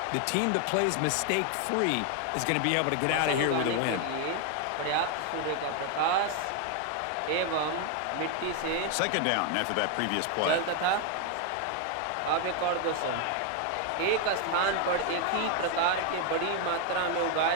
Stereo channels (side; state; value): both; different; correlation 0.01